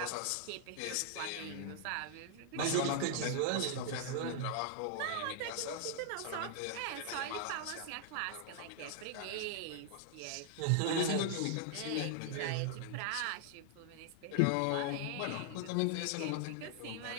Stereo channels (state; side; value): different; both; correlation 0.00